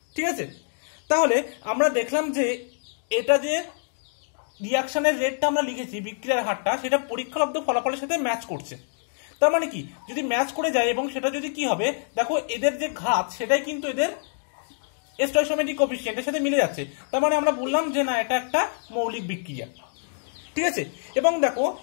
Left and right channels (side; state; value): right; silent; digital silence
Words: ঠিক আছে। তাহলে আমরা দেখলাম যে এটা যে রিয়াকশনের রেটটা আমরা লিখেছি, বিক্রিয়ার হারটা, সেটা পরীক্ষালব্ধ ফলাফলের সাথে ম্যাচ করছে। তার মানে কি, যদি ম্যাচ করে যায় এবং সেটা যদি কি হবে, দেখো এদের যে ঘাত সেটাই কিন্তু এদের স্টয়কিওমেট্রিক কোএফিসিয়েন্টের সাথে মিলে যাচ্ছে, তার মানে আমরা বললাম যে না এটা একটা মৌলিক বিক্রিয়া, ঠিক আছে। এবং দেখো